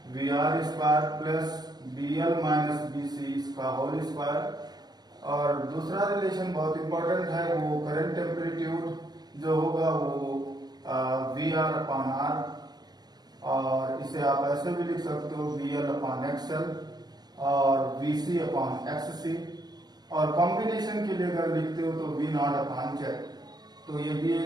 V R square plus B L minus B C इसका होल स्क्वायर। और दूसरा रिलेशन बहुत इंपॉर्टेंट है, वो करंट एम्पलीट्यूड जो होगा वो वी आर अपॉन आर और इसे आप ऐसे भी लिख सकते हो वी एल अपॉन एक्सएल और वी सी अपॉन एक्स सी और कॉम्बिनेशन के लिए अगर लिखते हो तो वी नॉट अपॉन जेड। तो ये भी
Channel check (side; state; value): left; late; 0.20 ms